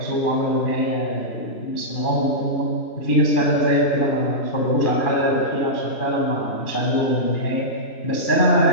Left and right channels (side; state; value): right; late; 2.5 ms